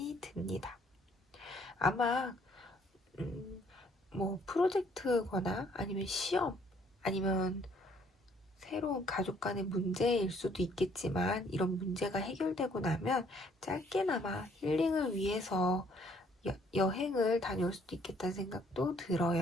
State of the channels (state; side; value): normal; both; correlation 0.63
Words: 듭니다. 아마 뭐 프로젝트거나 아니면 시험 아니면 새로운 가족 간의 문제일 수도 있겠지만 이런 문제가 해결되고 나면 짧게나마 힐링을 위해서 여행을 다녀올 수도 있겠다는 생각도